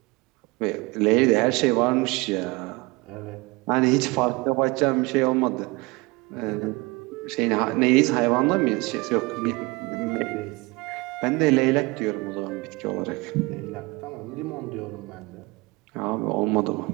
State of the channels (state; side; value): quieter; left; 24.3 dB